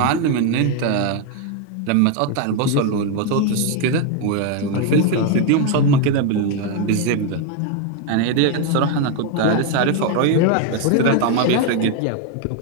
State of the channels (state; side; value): different; both; correlation 0.01